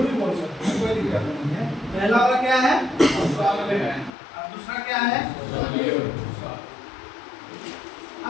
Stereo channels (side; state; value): right; drops out; at 4.1 s